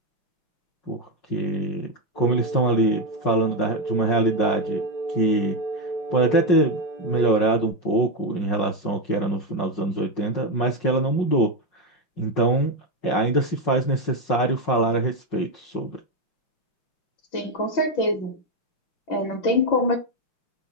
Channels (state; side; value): late; right; 5.5 ms